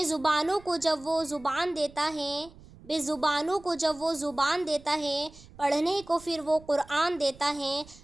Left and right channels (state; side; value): noise; right; rumble, 22 dB below the sound